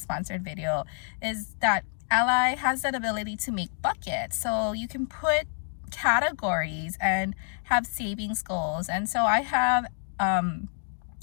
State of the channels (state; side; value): silent; right; 58 dB below the other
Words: video, is that Ally has that ability to make buckets. So you can put categories and have savings goals. And so I have